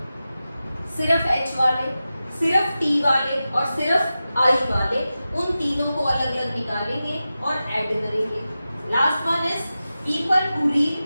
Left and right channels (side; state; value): both; inverted; correlation -0.93